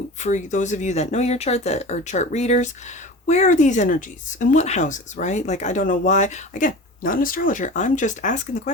of you that know your chart, that are chart readers, where are these energies? In what houses, right? Like, I don't know why. Again, not an astrologer. I'm just asking the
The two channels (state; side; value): normal; both; correlation 0.34